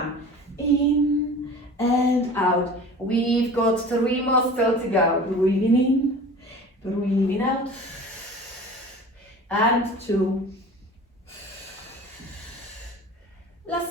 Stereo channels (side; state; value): both; normal; correlation 0.40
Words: In and out. We've got 3 more still to go. Breathing in, breathing out, and 2.